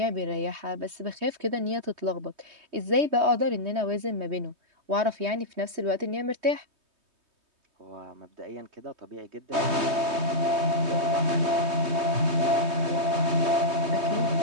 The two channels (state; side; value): late; left; 3.2 ms